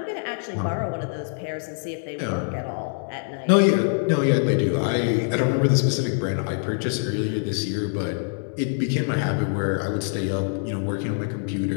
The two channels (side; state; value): right; silent; 62 dB below the other